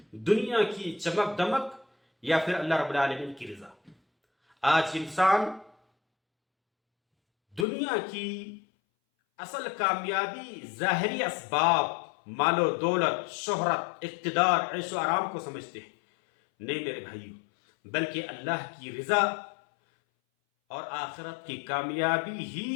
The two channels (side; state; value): right; drops out; at 7.7 s